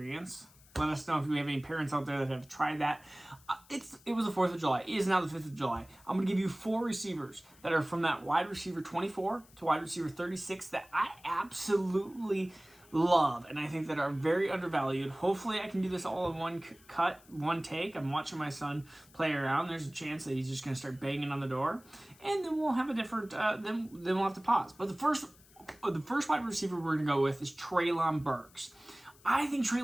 Let us know if we have any parents out there that have tried that. It was the 4th of July. It is now the 5th of July. I'm going to give you 4 receivers that are from that wide receiver 24 to wide receiver 36 that I absolutely love and I think that are very undervalued. Hopefully I can do this all in one cut, one take. I'm watching my son play around. There's a chance that he's just going to start banging on the door, and then we'll have a different then we'll have to pause. But the first wide receiver we're going to go with is Treylon Burks. I think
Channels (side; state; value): left; noise; hiss, 26 dB below the sound